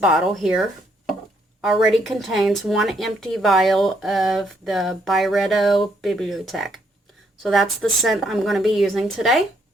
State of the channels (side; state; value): both; normal; correlation 0.72